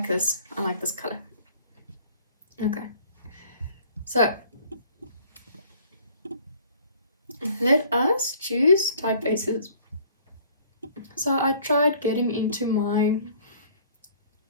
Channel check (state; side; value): inverted; both; correlation -0.54